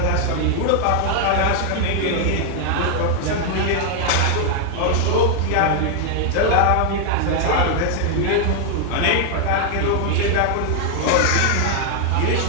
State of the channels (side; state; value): both; different; correlation 0.00